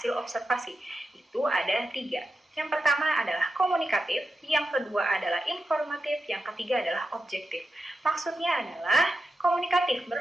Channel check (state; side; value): normal; both; correlation 0.89